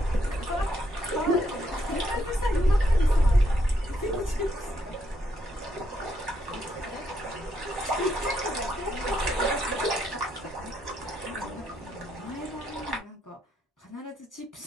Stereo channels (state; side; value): normal; both; correlation 0.76